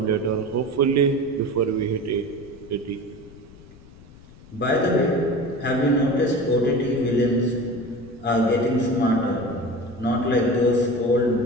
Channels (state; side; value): noise; left; rumble, 22 dB below the sound